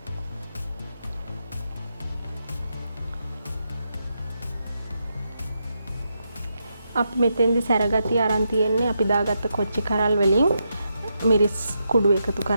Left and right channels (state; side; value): inverted; both; correlation -0.83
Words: අපි මෙතෙන්දි සැරගතිය අරන් තියෙන්නේ අපි දාගත්ත කොච්චි කරල් වලින් මිරිස් කුඩු එකතු